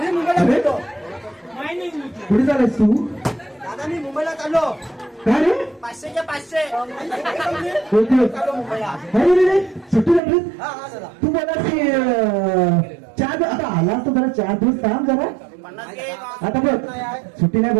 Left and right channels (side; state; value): left; drops out; at 10.2 s